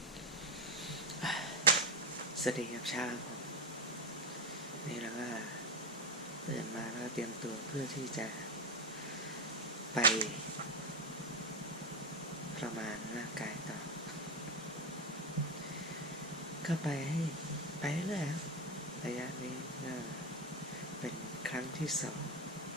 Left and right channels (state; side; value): normal; both; correlation 0.11